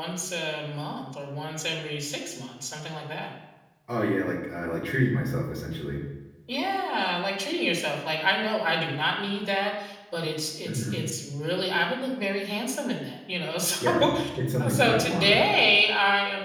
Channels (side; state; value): both; identical; correlation 1.00